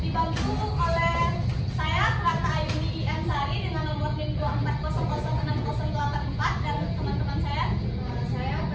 oleh saya Rata Ayuni Ansari dengan nomor NIM 240060084 dan teman-teman saya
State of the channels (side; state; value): both; identical; correlation 1.00